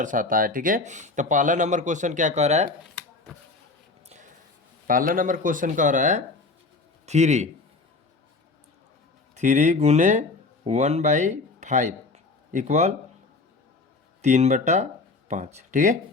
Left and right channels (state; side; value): quieter; right; 3.7 dB